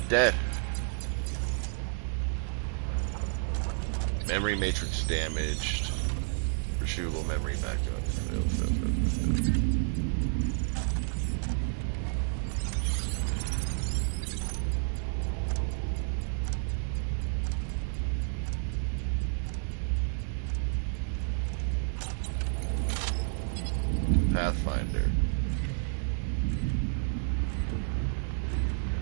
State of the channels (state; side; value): silent; left; 57 dB below the other